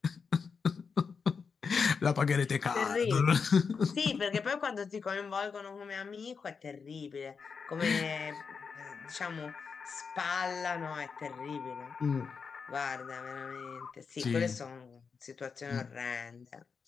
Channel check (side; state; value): right; quieter; 5.6 dB